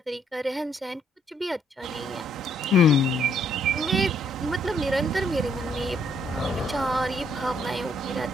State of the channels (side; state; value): both; normal; correlation 0.68